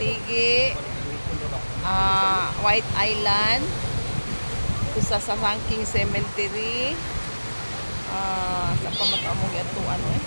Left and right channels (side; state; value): both; inverted; correlation -1.00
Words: White Island. Sa Sangking Cemetery. Sa pamataamong atuan